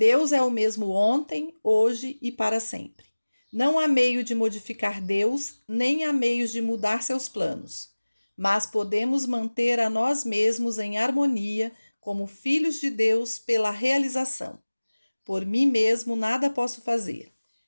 é o mesmo ontem, hoje e para sempre. Não há meio de modificar Deus, nem há meios de mudar seus planos, mas podemos manter a nós mesmos em harmonia como filhos de Deus pela realização. Por mim mesmo nada posso fazer,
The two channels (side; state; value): both; inverted; correlation -1.00